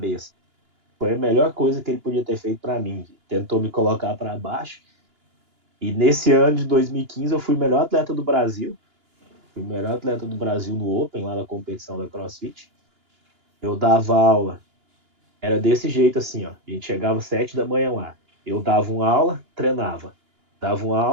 Foi a melhor coisa que ele podia ter feito para mim. Tentou me colocar para baixo. E nesse ano de 2015 eu fui o melhor atleta do Brasil. Fui o melhor atleta do Brasil no Open, lá na competição da CrossFit. Eu dava aula. Era desse jeito assim, ó. A gente chegava às 7 da manhã lá. Eu dava uma aula, treinava. Dava uma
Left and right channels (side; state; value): left; late; 2.9 ms